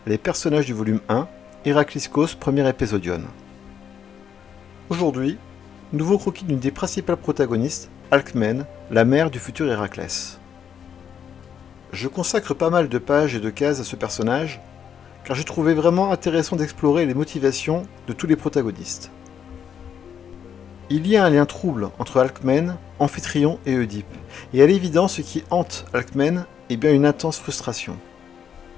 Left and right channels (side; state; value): right; quieter; 8.2 dB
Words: les personnages du volume 1, Héracliscos, premier épisodion. Aujourd'hui, nouveau croquis d'une des principales protagonistes, Alcmène, la mère du futur Héraclès. Je consacre pas mal de pages et de cases à ce personnage, car j'ai trouvé vraiment intéressant d'explorer les motivations de tous les protagonistes. Il y a un lien trouble entre Alcmène, Amphitryon et Oedipe, et à l'évidence ce qui hante Alcmène est bien une intense frustration.